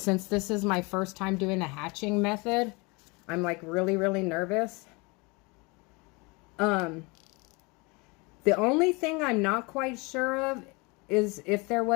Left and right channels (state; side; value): quieter; right; 27.6 dB